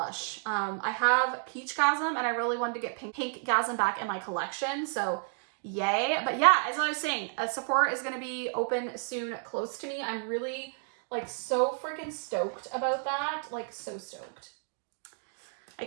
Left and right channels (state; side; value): silent; left; 57 dB below the other